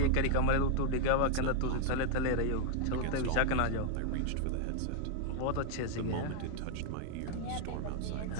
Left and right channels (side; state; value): both; different; correlation 0.00